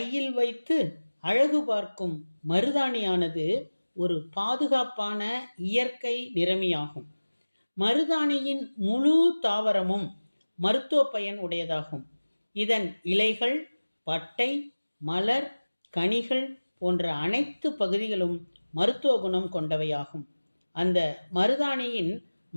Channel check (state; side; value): inverted; both; correlation -1.00